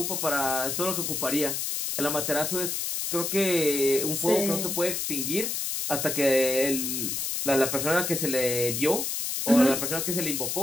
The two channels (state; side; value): noise; left; hiss, 2 dB below the sound